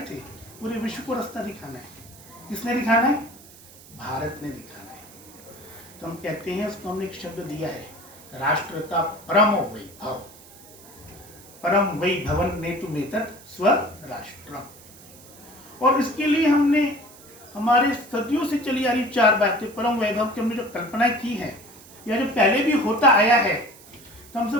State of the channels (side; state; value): right; noise; hiss, 21 dB below the sound